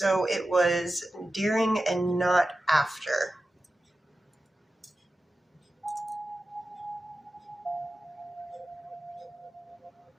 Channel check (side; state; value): both; normal; correlation 0.93